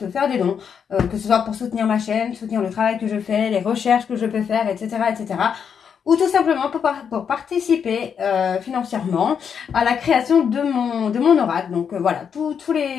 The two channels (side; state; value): right; quieter; 7.2 dB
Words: faire des dons, que ce soit pour soutenir ma chaîne, soutenir le travail que je fais, les recherches que je peux faire, etc. etc. Ou tout simplement pour participer financièrement à la création de mon oracle. Donc voilà, tous